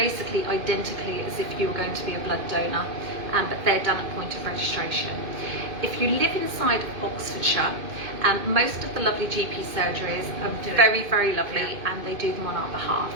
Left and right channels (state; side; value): late; left; 2.5 ms